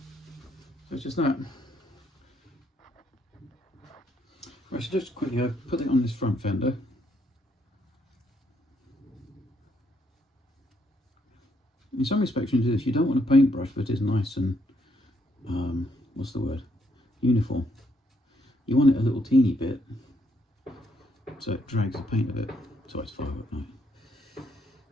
so it's just that. Right, so just quickly put it on this front fender. In some respects, when you do this, you don't want a paintbrush that is nice and what's the word, uniform. You want it a little teeny bit, so it drags the paint a bit. So it's 5 at night.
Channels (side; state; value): both; normal; correlation 0.73